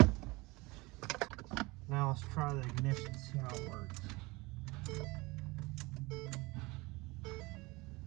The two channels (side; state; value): left; quieter; 23.5 dB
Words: Now let's try the ignition, see how it works.